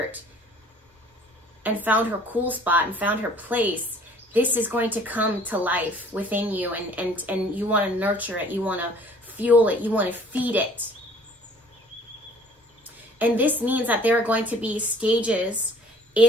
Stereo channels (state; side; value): normal; both; correlation 0.53